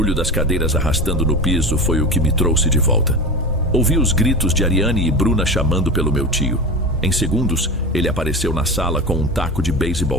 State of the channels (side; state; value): both; normal; correlation 0.26